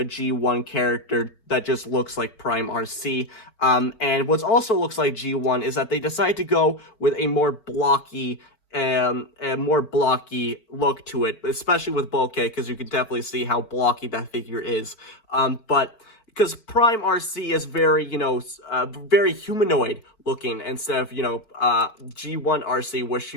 G1 character that just looks like Prime Arcee. And what also looks like G1 is that they decided to go with a more blocky look to it, especially with Bulkhead, because you can definitely see how blocky that figure is. But because Prime Arcee is very, very humanoid looking, instead of, G1 Arcee, where she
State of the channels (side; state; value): right; late; 4.5 ms